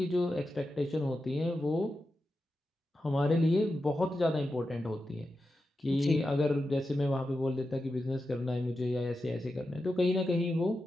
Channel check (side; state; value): both; normal; correlation 0.90